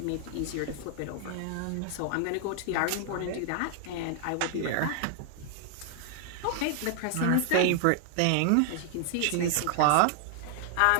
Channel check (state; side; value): different; both; correlation 0.00